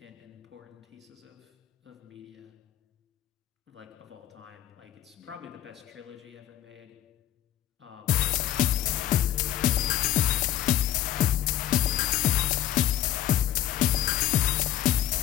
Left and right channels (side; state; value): right; quieter; 12.2 dB